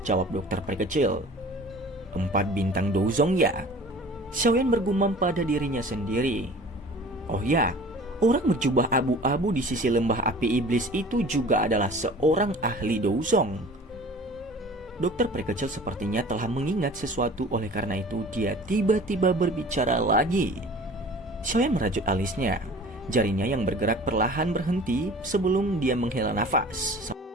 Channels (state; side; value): normal; both; correlation 0.44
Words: jawab dokter perkecil. 4 bintang Douzong ya? Xiaoyan bergumam pada dirinya sendiri. Oh ya, orang berjubah abu-abu di sisi lembah api iblis itu juga adalah seorang ahli Douzong. Dokter perkecil sepertinya telah mengingat sesuatu, oleh karena itu dia tiba-tiba berbicara lagi. Xiaoyan merajut alisnya. Jarinya yang bergerak perlahan berhenti sebelum dia menghela nafas.